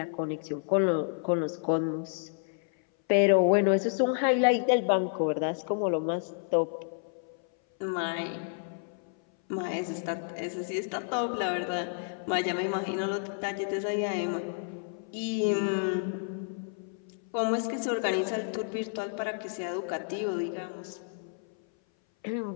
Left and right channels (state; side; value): silent; right; 57 dB below the other